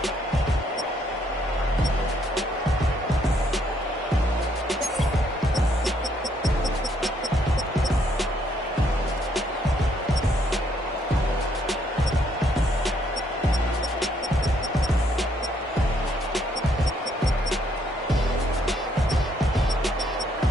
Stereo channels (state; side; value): normal; both; correlation 0.70